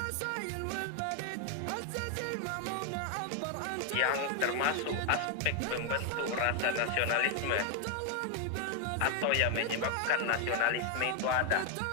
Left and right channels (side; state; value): both; different; correlation 0.01